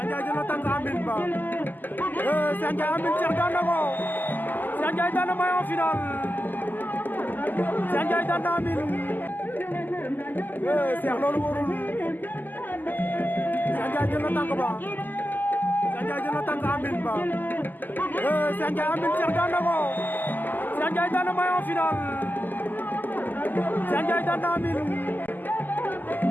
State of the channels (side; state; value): right; late; 0.087 ms